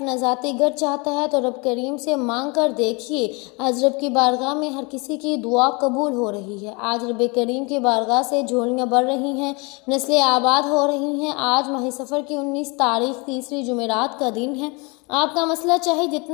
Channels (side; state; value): right; quieter; 29.4 dB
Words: ذاتی گھر چاہتا ہے تو رب کریم سے مانگ کر دیکھیے، آج رب کی بارگاہ میں ہر کسی کی دعا قبول ہو رہی ہے۔ آج رب کریم کی بارگاہ سے جھولیاں بڑھ رہی ہیں، نسلیں آباد ہو رہی ہیں۔ آج ماہ سفر کی 19 تاریخ تیسری جمعرات کا دن ہے۔ آپ کا مسئلہ چاہے